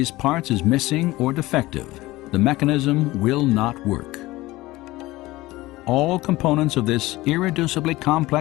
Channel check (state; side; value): quieter; right; 18.8 dB